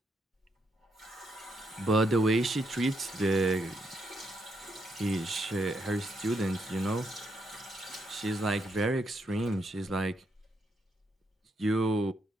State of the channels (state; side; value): normal; both; correlation 0.78